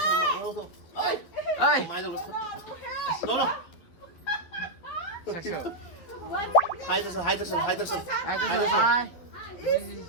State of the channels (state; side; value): late; right; 12 ms